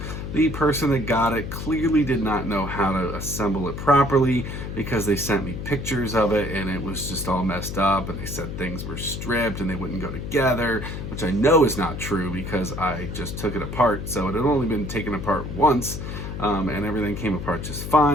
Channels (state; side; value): noise; left; hum, 6 dB below the sound